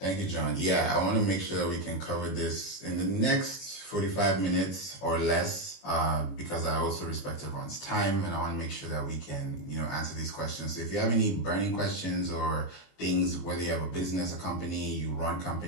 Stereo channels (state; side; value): late; right; 21 ms